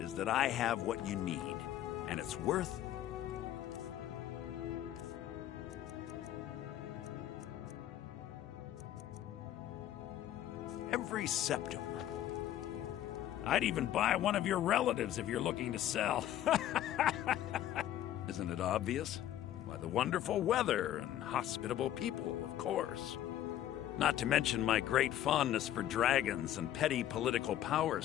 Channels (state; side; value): quieter; right; 12.2 dB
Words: that I have what you need, and it's worth... every septum. I'd even buy one of your relatives if you're looking to sell. Isn't it obvious? Why, the wonderful weather and hospitable people, of course. Not to mention my great fondness for dragons and petty political power